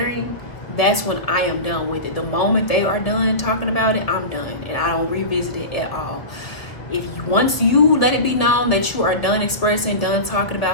that's when I am done with it. The moment they are done talking about it, I'm done, and I don't revisit it at all. Once you let it be known that you are done expressing, done talking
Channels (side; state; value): right; late; 1.4 ms